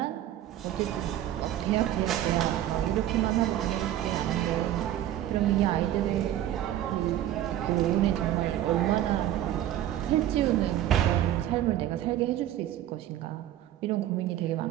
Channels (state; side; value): quieter; left; 12.4 dB